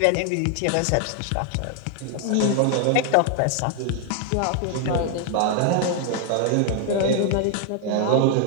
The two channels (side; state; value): both; different; correlation 0.00